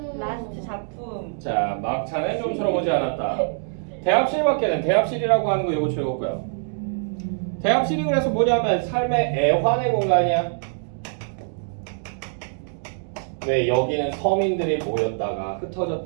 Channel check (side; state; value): left; silent; digital silence